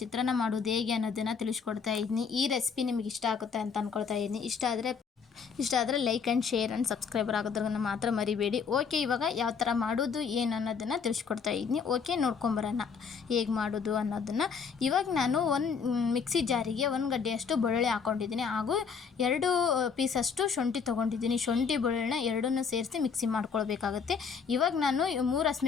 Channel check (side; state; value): right; quieter; 6.0 dB